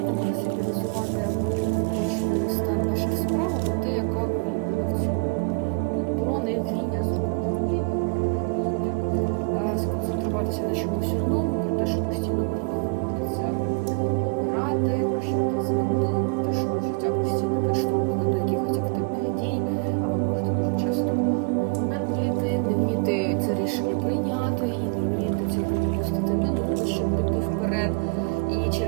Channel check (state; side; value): quieter; left; 32.2 dB